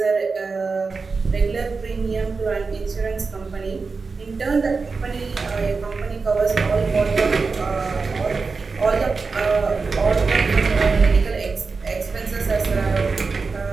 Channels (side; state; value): left; quieter; 4.5 dB